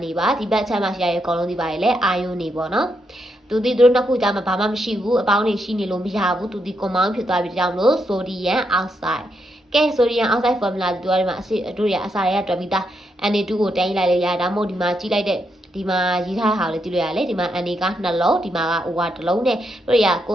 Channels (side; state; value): both; normal; correlation 0.81